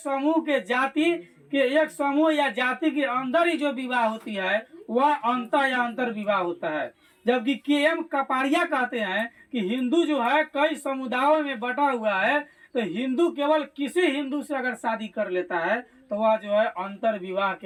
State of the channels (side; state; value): both; identical; correlation 1.00